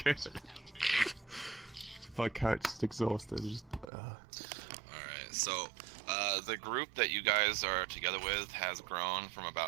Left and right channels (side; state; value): left; drops out; at 3.9 s